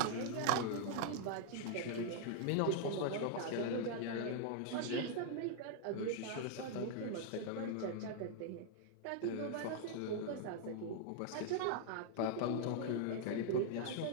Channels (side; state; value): both; different; correlation -0.01